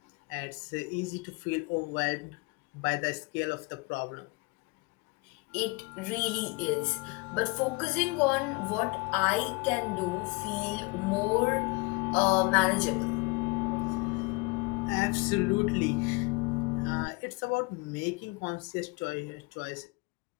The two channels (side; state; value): right; quieter; 25.8 dB